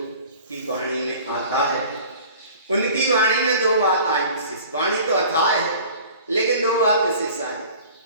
की वाणी में आता है। उनकी वाणी में दो बात आई विशेष। वाणी तो अथाह है लेकिन दो बात विशेष आई।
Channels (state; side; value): inverted; both; correlation -0.45